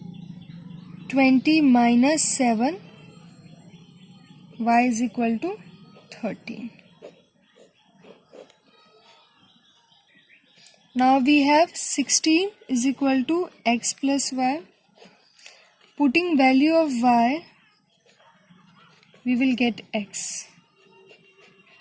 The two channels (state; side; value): identical; both; correlation 1.00